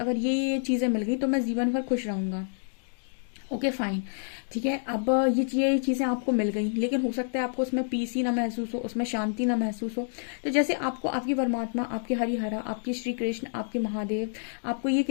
ये चीजें मिल गई तो मैं जीवन भर खुश रहूंगा। Okay fine. ठीक है, अब ये चीजें आपको मिल गई, लेकिन हो सकता है आपको उसमें पीस ही ना महसूस हो, उसमें शांति ना महसूस हो। तो जैसे आपको आपकी परमात्मा, आपके हरिहरा, आपके श्री कृष्ण, आपके महादेव आपको ये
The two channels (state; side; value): silent; right; digital silence